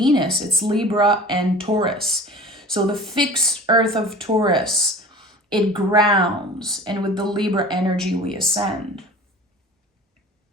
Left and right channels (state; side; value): normal; both; correlation 0.41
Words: it's Libra and Taurus. So the fixed earth of Taurus, it grounds, and with the Libra energy we ascend.